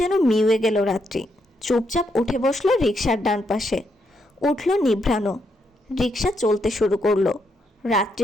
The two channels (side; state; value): both; normal; correlation 0.78